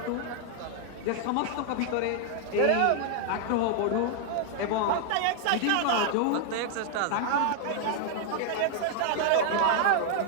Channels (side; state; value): both; different; correlation 0.00